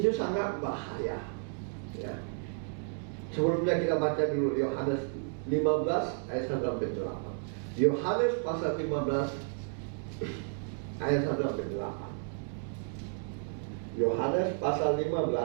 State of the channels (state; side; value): silent; left; 56 dB below the other